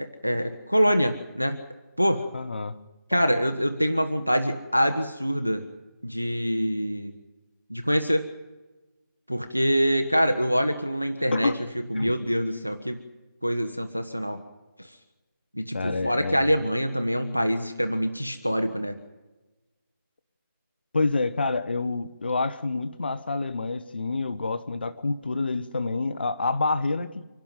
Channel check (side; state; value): both; inverted; correlation -0.93